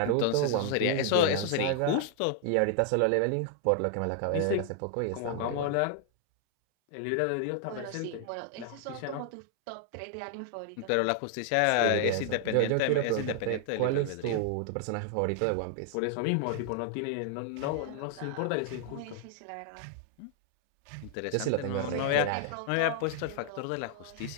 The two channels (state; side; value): different; both; correlation 0.00